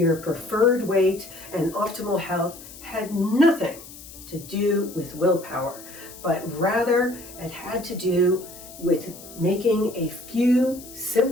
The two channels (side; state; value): left; noise; hiss, 17 dB below the sound